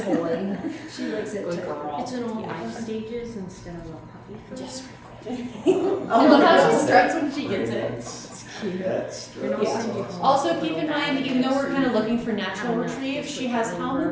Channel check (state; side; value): identical; both; correlation 1.00